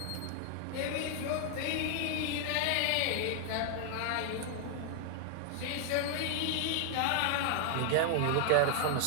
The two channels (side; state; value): both; different; correlation 0.00